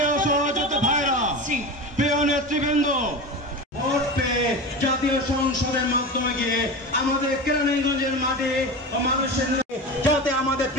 সহযোদ্ধা ভাইরা, প্রিয় নেতৃবৃন্দ, ভোট পেয়ে জাতীয় সংসদের মাধ্যমে গিয়ে আমাদের কেরানীগঞ্জের মাঠে মানুষের যাতে আমাদের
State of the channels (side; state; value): both; normal; correlation 0.27